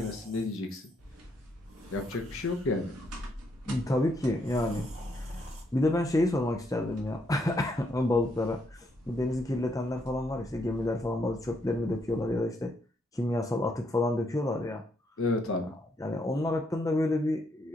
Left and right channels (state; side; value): normal; both; correlation 0.75